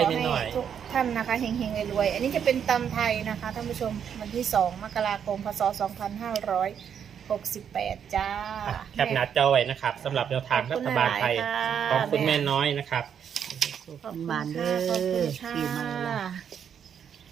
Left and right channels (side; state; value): left; quieter; 8.1 dB